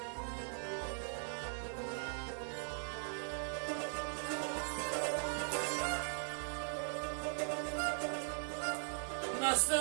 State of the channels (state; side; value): silent; left; digital silence